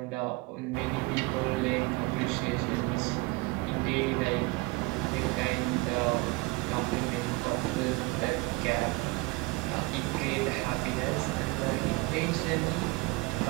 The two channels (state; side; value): quieter; left; 24.0 dB